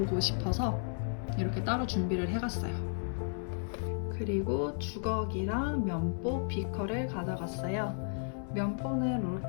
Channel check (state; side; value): silent; right; digital silence